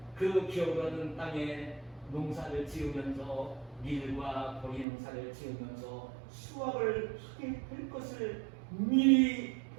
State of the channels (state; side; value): drops out; left; at 4.9 s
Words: 그 기업으로는 땅에 농사를 지으면서 밀과 보리 농사를 지으면서 수확을 하게 될 것을 미리